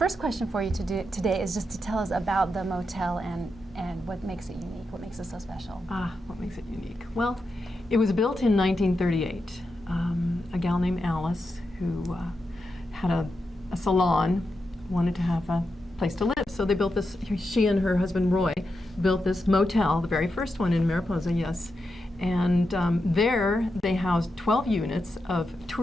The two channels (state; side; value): normal; both; correlation 0.87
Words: question for you today is just to tell us about the motel and what makes it unique, what makes it so special. What makes it unique? Well, it was built in 1938. A gal named Alice, who had a salon, wanted to have a place to live. So they built this, she and her husband Roy built this motel, the very first one in Mariposa, yes. And there they housed 12 units of